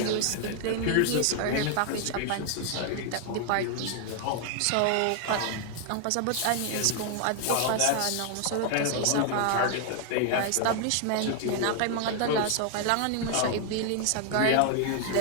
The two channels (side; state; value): both; different; correlation 0.00